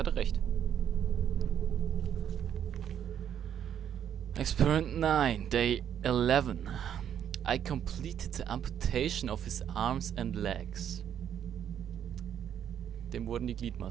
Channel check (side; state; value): left; quieter; 9.4 dB